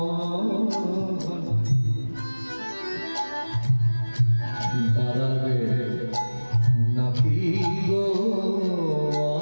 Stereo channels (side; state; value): both; inverted; correlation -1.00